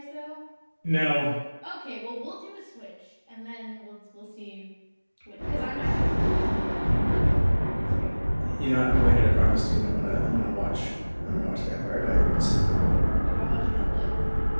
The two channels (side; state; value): both; inverted; correlation -1.00